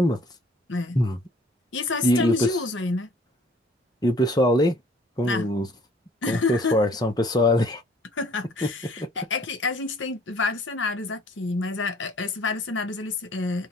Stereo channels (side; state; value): both; normal; correlation 0.56